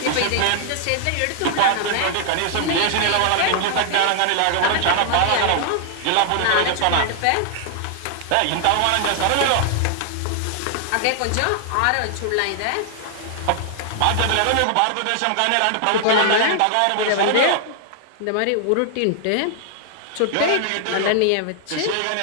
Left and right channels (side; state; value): both; different; correlation 0.00